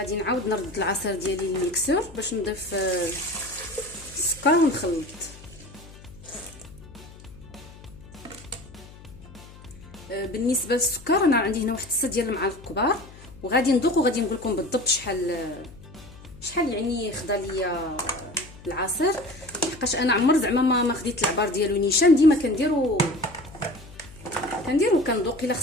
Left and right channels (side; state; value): left; noise; hum, 19 dB below the sound